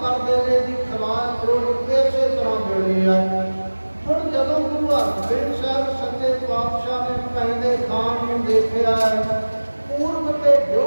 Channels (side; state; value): both; inverted; correlation -1.00